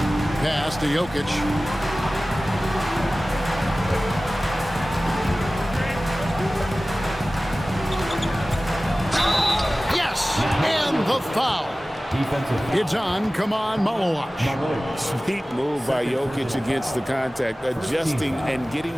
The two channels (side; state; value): both; normal; correlation 0.97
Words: Pass to Jokic. Yes! And the foul. It's on. Come on, Malowash. Sweet move by Jokic against the contact, adjusting and getting